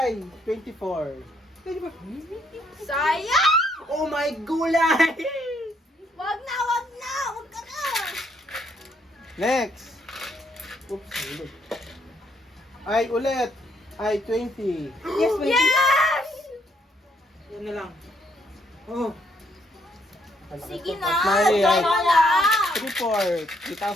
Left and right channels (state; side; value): normal; both; correlation 0.71